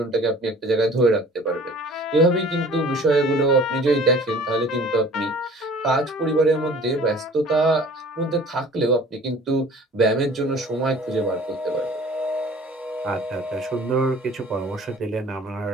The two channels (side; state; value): both; normal; correlation 0.48